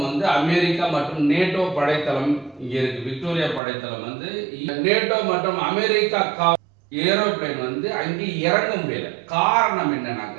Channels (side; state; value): left; drops out; at 3.6 s